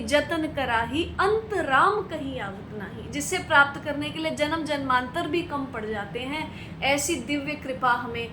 जतन कराही, अंत राम कहीं आवत नाही। जिसे प्राप्त करने के लिए जन्म जन्मांतर भी कम पड़ जाते हैं। ऐसी दिव्य कृपा हमें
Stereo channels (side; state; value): both; identical; correlation 1.00